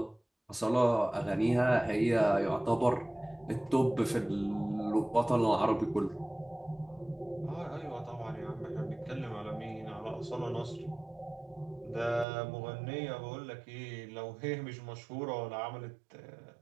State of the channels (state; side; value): drops out; left; at 12.2 s